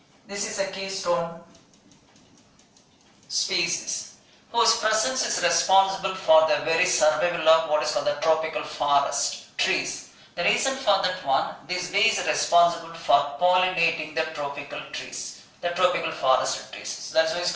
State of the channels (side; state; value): both; identical; correlation 1.00